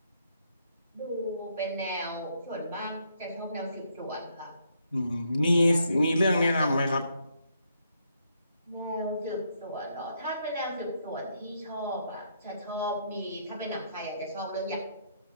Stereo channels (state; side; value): inverted; both; correlation -0.74